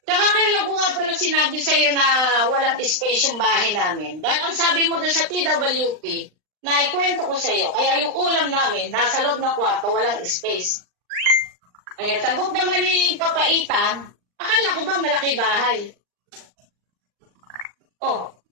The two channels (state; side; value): late; left; 39 ms